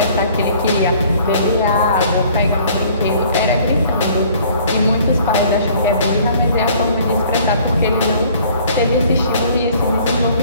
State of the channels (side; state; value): both; inverted; correlation -0.55